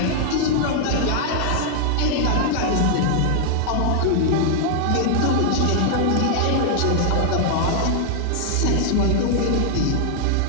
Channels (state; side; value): different; both; correlation 0.00